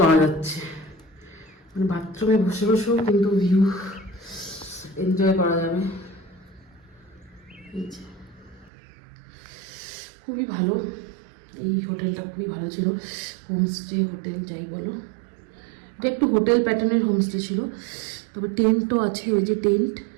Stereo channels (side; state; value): left; drops out; at 8.7 s